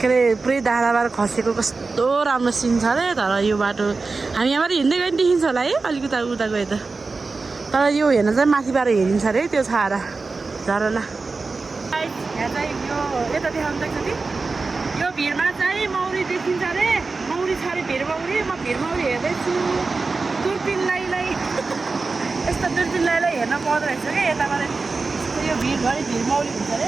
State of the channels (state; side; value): quieter; left; 4.0 dB